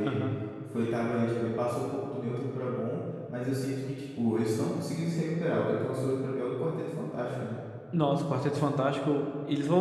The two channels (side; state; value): both; identical; correlation 1.00